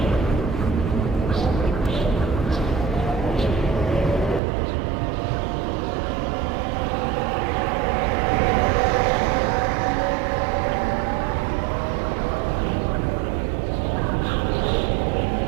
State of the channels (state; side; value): drops out; left; at 4.4 s